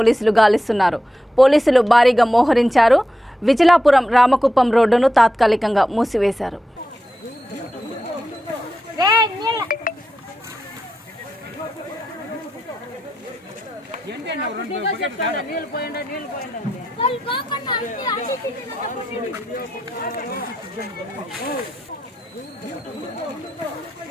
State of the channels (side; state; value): both; normal; correlation 0.88